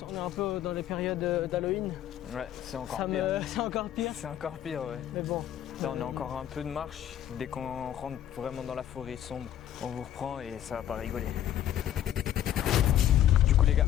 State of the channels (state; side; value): quieter; right; 11.2 dB